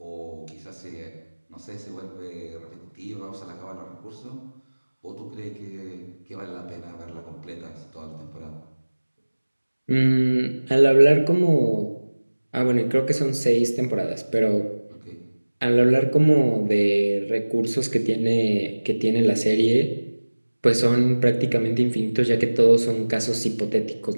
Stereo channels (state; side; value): inverted; both; correlation -1.00